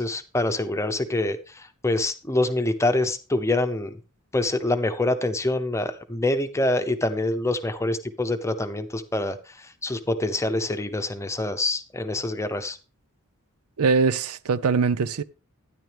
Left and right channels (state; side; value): normal; both; correlation 0.46